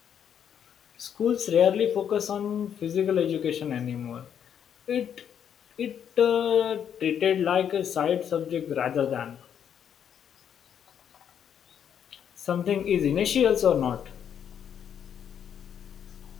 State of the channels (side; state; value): right; quieter; 8.6 dB